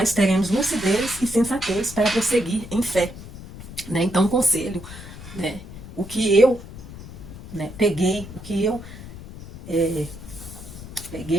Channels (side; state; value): left; noise; rumble, 14 dB below the sound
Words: teremos lucidez e sensatez para prosseguir em fé. né? Então, um conselho, né? O que eu, né, peguei, o que eu